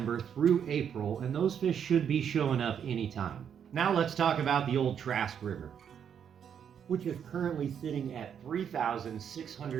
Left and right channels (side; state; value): left; quieter; 8.2 dB